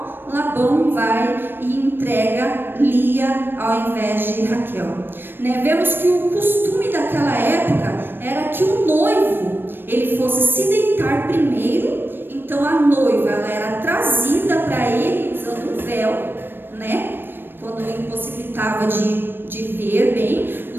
Labão vai e entrega Lia ao invés de Raquel, né? Vemos que o costume daquela época era que o noivo, ele fosse se deitar primeiro. Então a noiva, ela era trazida para ele usando um véu, né? Quando ele impossibilitava de ver bem,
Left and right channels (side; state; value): left; late; 0.097 ms